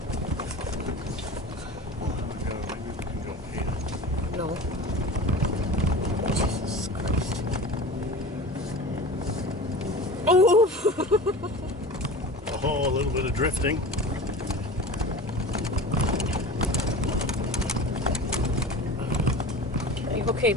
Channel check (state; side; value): normal; both; correlation 0.35